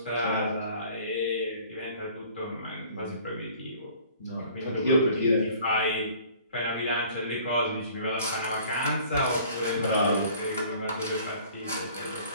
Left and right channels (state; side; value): inverted; both; correlation -0.52